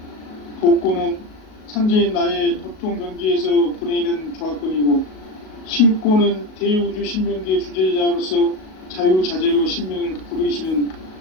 복권은 상제인 나의 도통 경지에서 보내는 조합권이고, 신권은 대우주 신명기의 주제자로서 자유자재로 신명을 부르시는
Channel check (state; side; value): late; right; 37 ms